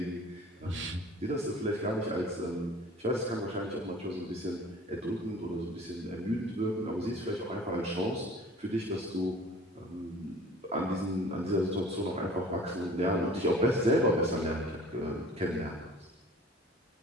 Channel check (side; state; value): both; normal; correlation 0.47